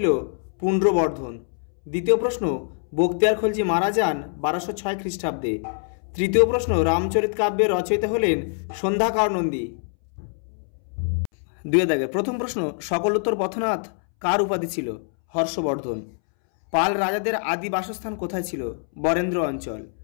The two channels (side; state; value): right; silent; 63 dB below the other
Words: পুণ্ড্রবর্ধন। দ্বিতীয় প্রশ্ন, বখতিয়ার খলজি মারা যান 1206 খ্রিস্টাব্দে। তৃতীয় প্রশ্ন, রামচরিত কাব্যের রচয়িতা হলেন সন্ধ্যাকর নন্দী। দুই দাগের প্রথম প্রশ্ন, সকলোত্তর পথনাথ কার উপাধি ছিল? হর্ষবর্ধন। পাল রাজাদের আদি বাসস্থান কোথায় ছিল? বরেন্দ্র অঞ্চল।